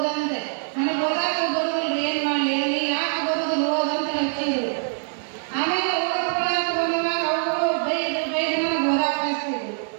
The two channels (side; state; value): left; silent; digital silence